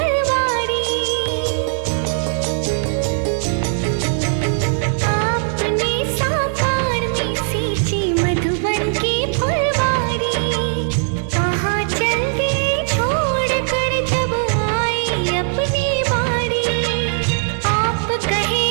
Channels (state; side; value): silent; left; digital silence